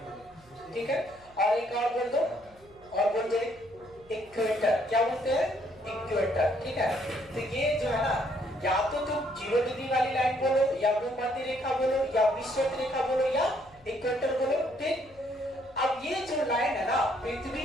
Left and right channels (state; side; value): noise; right; hum, 27 dB below the sound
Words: ठीक है। और एक और बोल दो। और बोल दो इक्वेटर। क्या बोलते हैं? इक्वेटर। ठीक है। तो ये जो है ना या तो तुम 0 डिग्री वाली लाइन बोलो या भूमध्य रेखा बोलो या विषुवत रेखा बोलो या इक्वेटर बोलो। ठीक। अब ये जो लाइन है ना